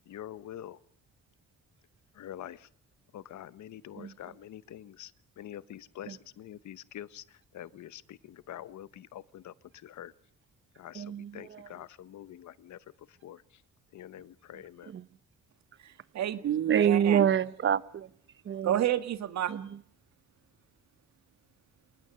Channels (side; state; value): left; quieter; 8.1 dB